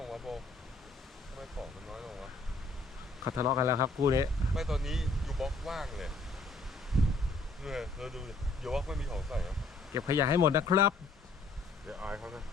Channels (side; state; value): right; quieter; 3.4 dB